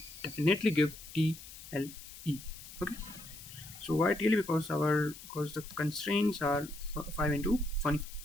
definitely give TLE. Okay. So why TLE? Because the constraints are 5 into 20.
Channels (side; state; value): left; noise; hiss, 15 dB below the sound